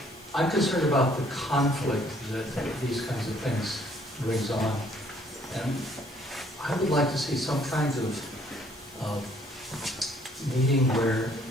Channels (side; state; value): both; normal; correlation 0.63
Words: concerned about the conflict that these kinds of things brings on. And I would like to see some kind of meeting where